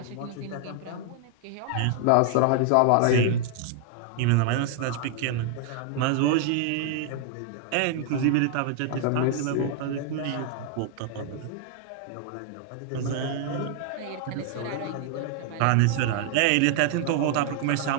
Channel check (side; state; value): both; different; correlation 0.00